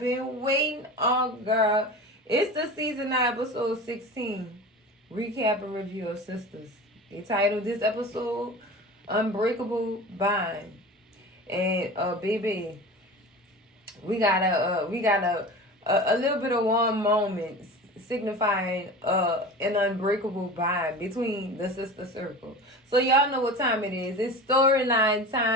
waiting on, girl. It's the Season 9 episode 16 recap and review of Sistas. They titled this episode Unbreakable Bond. And baby, we got a little bit of one moment signifying an unbreakable bond between the sister circle. So y'all know what time it is. It's storyline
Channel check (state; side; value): normal; both; correlation 0.34